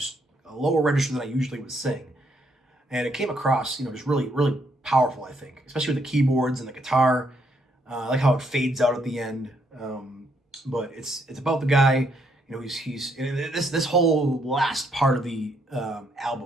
a lower register than I usually would sing. And it came across, just really, really powerful, I think, especially with the keyboards and the guitar. I like how it fades out at the end. But it's about the guy. He's this whole last part of the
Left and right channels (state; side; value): normal; both; correlation 0.73